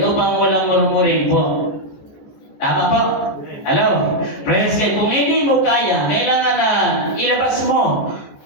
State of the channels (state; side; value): late; right; 14 ms